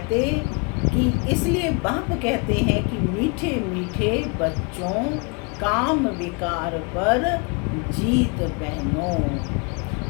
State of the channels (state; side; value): quieter; right; 32.7 dB